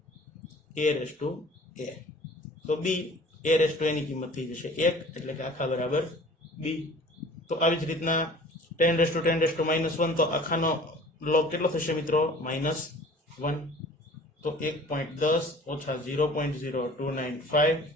a⁻a, તો b a⁻a ની કિંમત થઈ જશે 1 એટલે કે આખા બરાબર b। તો આવી જ રીતના 10⁻10⁻1 તો આખાનો log કેટલો થશે મિત્રો, -1, તો 1.10 ઓછા 0.0295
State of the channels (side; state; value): both; normal; correlation 0.47